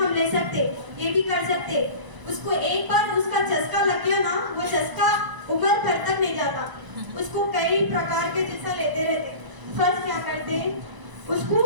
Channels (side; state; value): left; late; 1.0 ms